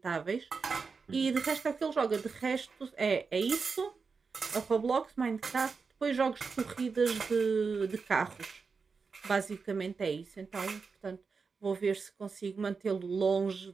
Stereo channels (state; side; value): quieter; left; 5.0 dB